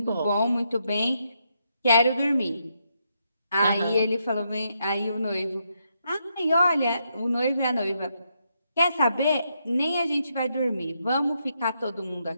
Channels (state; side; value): inverted; both; correlation -0.79